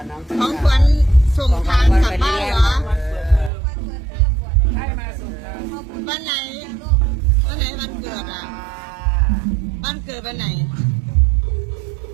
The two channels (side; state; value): left; drops out; at 3.5 s